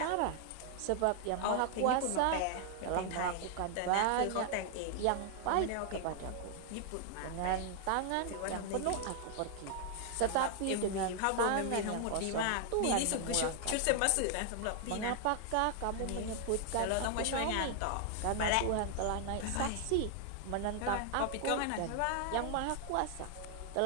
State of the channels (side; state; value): both; different; correlation 0.00